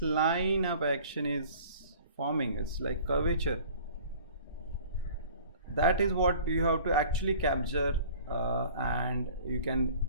line of action is forming. It's like curvature. That is what you have to actually capture. And you can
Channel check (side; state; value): both; inverted; correlation -0.47